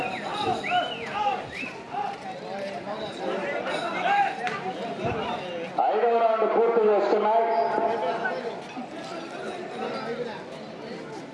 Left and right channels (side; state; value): both; identical; correlation 1.00